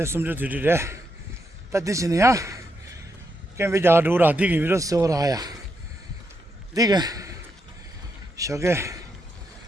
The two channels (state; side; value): normal; both; correlation 0.81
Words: 숨좀 들이래. 다 드시냐? 그럼 이제 아루라 디기 위로서라야. 디게 저게